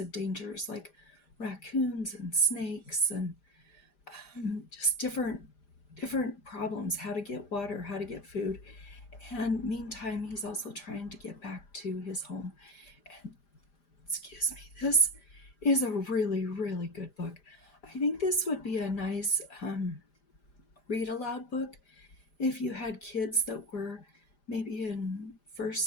dangers like raccoons and snakes and just different problems, how to get water, how to get food. And meantime, he's also trying to get back to his home. And excuse me, this is a really, really good book. I think this would be a nice read aloud book if you had kids that were maybe in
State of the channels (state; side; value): late; right; 5.0 ms